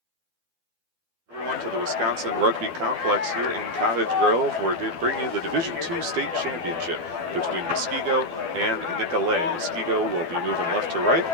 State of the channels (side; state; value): left; late; 12 ms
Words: To the Wisconsin Rugby Complex here in Cottage Grove, where they bring you the Division II State Championship between Muskego and Nicolet. Muskego will be moving left to right.